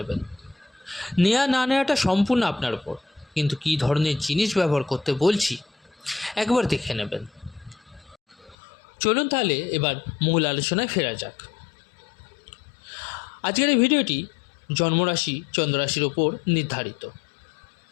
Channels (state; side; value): drops out; right; at 8.6 s